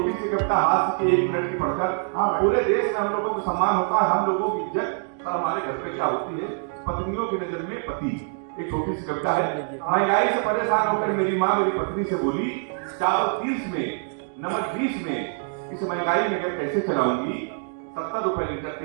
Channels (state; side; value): silent; left; 62 dB below the other